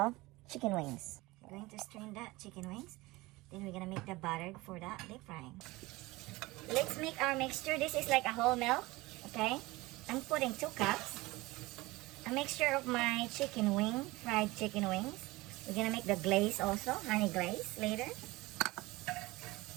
chicken wings. We're going to strain that chicken wings. Then we're gonna make the butter for that deep frying. Let's make our mixture. This is like a whole milk, okay? I'm putting 2 cups. A mixture of my chicken wing, fried chicken wings. We're gonna make the glaze also, honey glaze later.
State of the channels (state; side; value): quieter; left; 21.0 dB